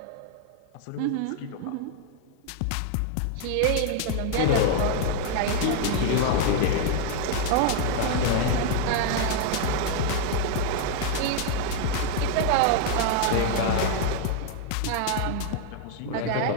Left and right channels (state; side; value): different; both; correlation 0.00